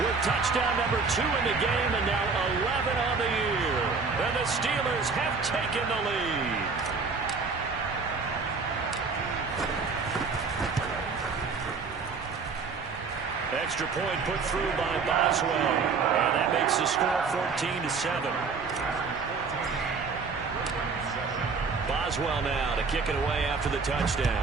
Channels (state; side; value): quieter; left; 4.8 dB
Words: touchdown number 2 in the game, and now 11 on the year. And the Steelers have taken the lead. Extra point put through by Boswell, and that makes the score 14-7. Boswell now to kick it away after the